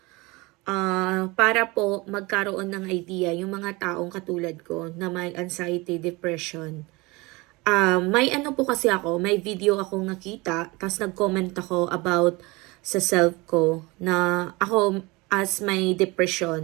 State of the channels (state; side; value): quieter; left; 24.2 dB